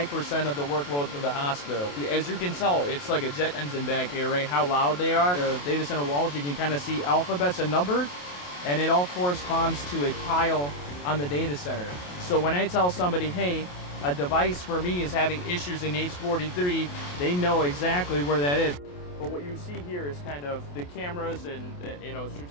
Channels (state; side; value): late; right; 28 ms